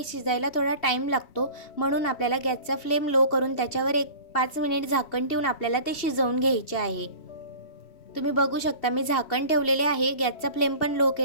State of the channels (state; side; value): late; right; 2.7 ms